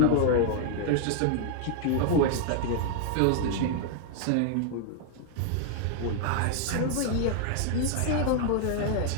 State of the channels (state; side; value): different; both; correlation 0.00